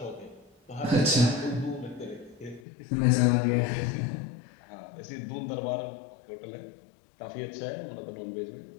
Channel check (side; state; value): right; drops out; at 2.6 s